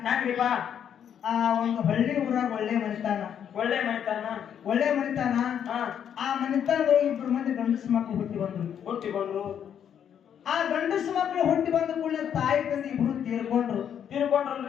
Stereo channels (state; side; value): quieter; right; 8.8 dB